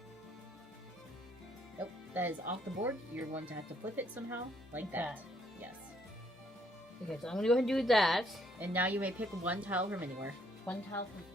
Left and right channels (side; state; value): both; normal; correlation 0.69